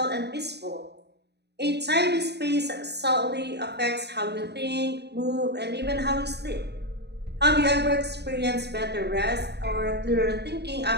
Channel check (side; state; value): left; late; 0.49 ms